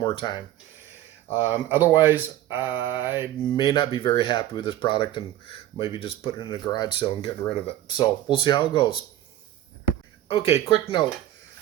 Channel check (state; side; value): quieter; left; 13.2 dB